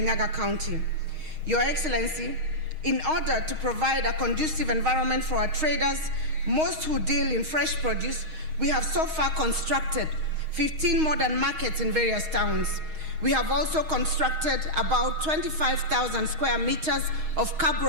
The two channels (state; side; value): late; left; 6.4 ms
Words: County. Your Excellency, in order to provide a conducive environment for our traders, most who deal in fresh produce, we have so far constructed 15 modern markets in various towns. We have also constructed about 25,000 square meters of